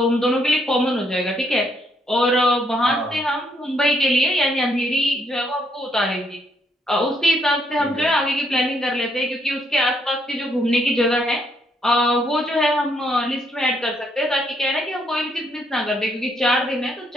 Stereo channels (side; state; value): both; normal; correlation 0.72